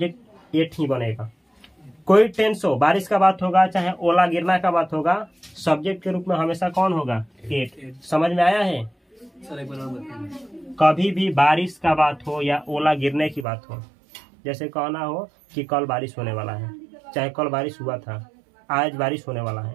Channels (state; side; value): drops out; left; at 13.5 s